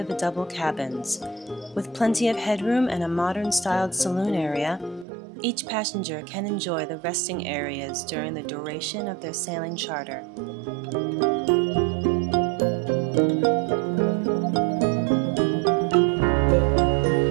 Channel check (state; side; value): drops out; left; at 5.1 s